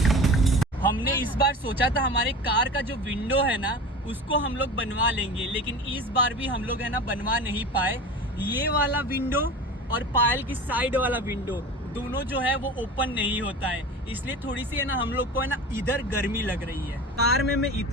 हमने इस बार सोचा था हमारे कार का जो विंडो है ना उसको हम लोग बनवा लेंगे, लेकिन इस बार भी हम लोग है ना बनवा नहीं पाए। ये वाला विंडो और पायल की साइड वाला विंडो दोनों जो है वो ओपन नहीं होता है, इसलिए थोड़ी सी है ना हम लोग को है ना इधर गर्मी लग रही है। कार में मैं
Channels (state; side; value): normal; both; correlation 0.33